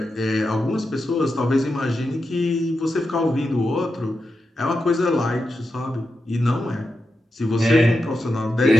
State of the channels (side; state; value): both; normal; correlation 0.89